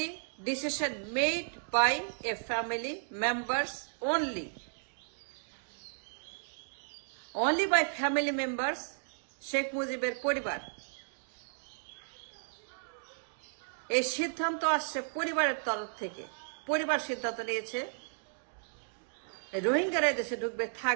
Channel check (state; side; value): silent; left; digital silence